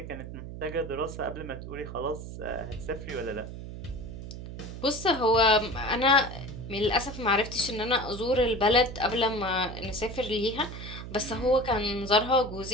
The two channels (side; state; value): right; noise; hum, 10 dB below the sound